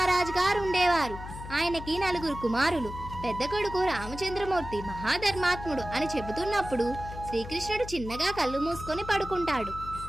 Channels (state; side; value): noise; left; hum, 11 dB below the sound